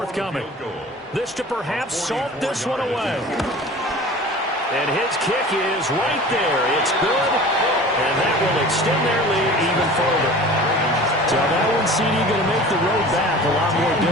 This to perhaps salt this one away. And his kick is right there. It's good. And that will extend their lead even further. So that one, CD, going to make the road back a lot more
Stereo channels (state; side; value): normal; both; correlation 0.41